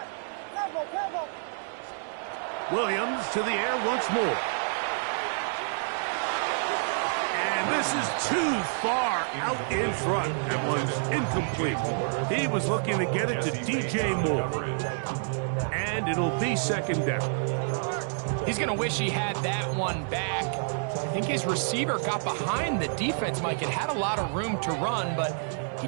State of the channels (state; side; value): silent; left; 59 dB below the other